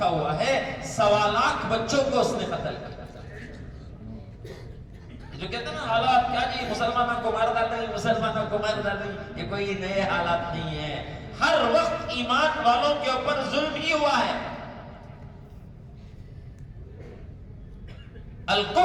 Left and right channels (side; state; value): both; identical; correlation 1.00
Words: ہوا ہے 1.25 لاکھ بچوں کو اس نے قتل کیا. جو کہتے ہیں نا حالات کیا جی مسلمانوں کو مار ڈالیں، مسلمانوں کو مار ڈالیں، یہ کوئی نئے حالات نہیں ہے. ہر وقت ایمان والوں کے اوپر ظلم ہی ہوا ہے.